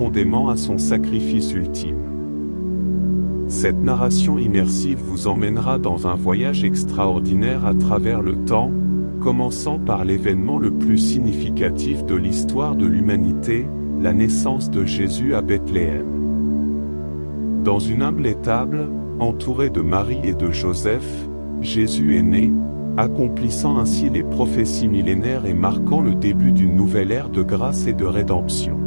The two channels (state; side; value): inverted; both; correlation -1.00